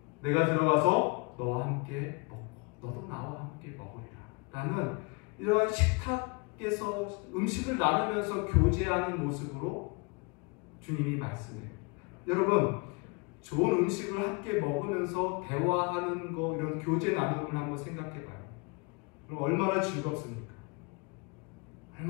내가 들어가서 너와 함께 먹고 너도 나와 함께 먹으리라 라는 이러한 식탁에서 음식을 나누면서 교제하는 모습으로 주님이 말씀해요. 여러분, 좋은 음식을 함께 먹으면서 대화하는 거, 이런 교제 나눔을 한번 생각해봐요. 그럼 얼마나 즐겁습니까?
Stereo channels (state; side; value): quieter; right; 31.1 dB